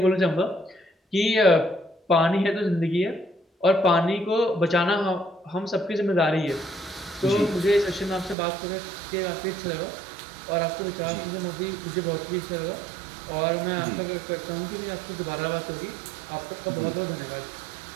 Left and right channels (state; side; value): drops out; left; at 8.3 s